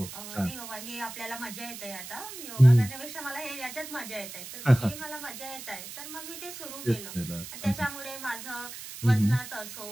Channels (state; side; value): noise; right; hiss, 11 dB below the sound